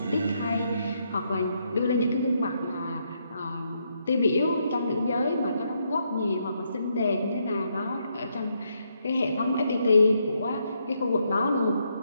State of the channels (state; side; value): inverted; both; correlation -0.77